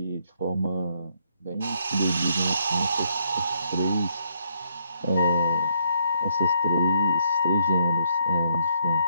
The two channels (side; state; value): both; inverted; correlation -0.72